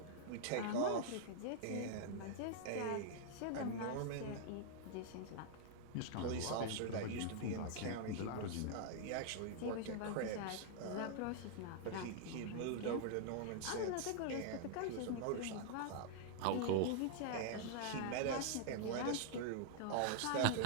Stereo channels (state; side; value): different; both; correlation -0.01